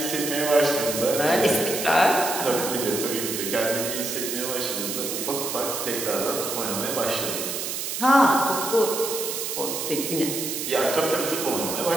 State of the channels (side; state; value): right; noise; hiss, 3 dB below the sound